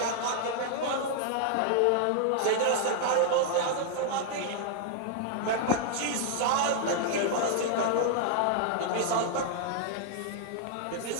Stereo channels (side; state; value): both; different; correlation 0.00